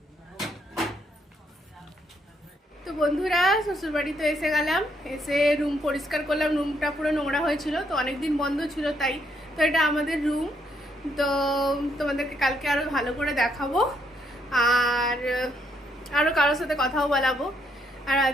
তো বন্ধুরা শ্বশুর বাড়িতে এসে গেলাম, এসে রুম পরিষ্কার করলাম। রুমটা পুরো নোংরা হয়েছিল, তো অনেকদিন বন্ধ ছিল তাই। তো এটা আমাদের রুম। তো তোমাদেরকে কালকে আরও ভালো করে দেখাবো, আর আরও কারোর সাথে কথাও বলাবো, আর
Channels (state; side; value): normal; both; correlation 0.73